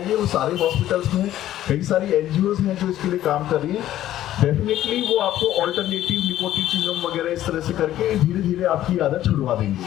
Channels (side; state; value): right; quieter; 13.0 dB